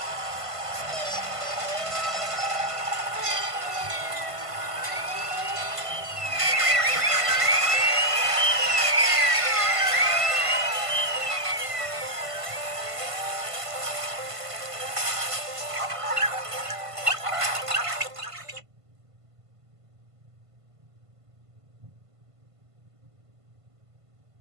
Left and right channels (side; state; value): left; late; 1.5 ms